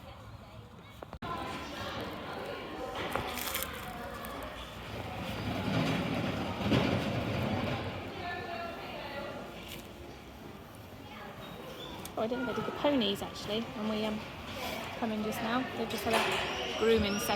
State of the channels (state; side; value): identical; both; correlation 1.00